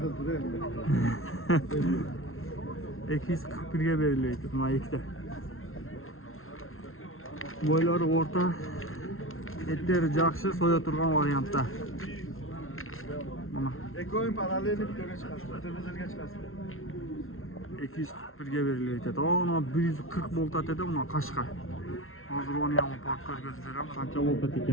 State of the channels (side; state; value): right; late; 0.61 ms